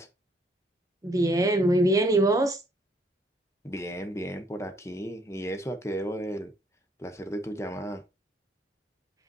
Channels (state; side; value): normal; both; correlation 0.66